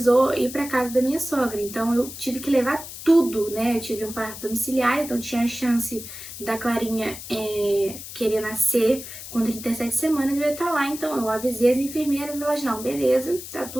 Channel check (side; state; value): left; noise; hiss, 12 dB below the sound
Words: ir para casa da minha sogra. Então, eu tive que levar tudo, né? Eu tive um parto domiciliar, então tinha a chance da Clarinha querer nascer com 37 semanas, eu ia estar lá. Então, eu avisei as enfermeiras, elas, não, beleza, tá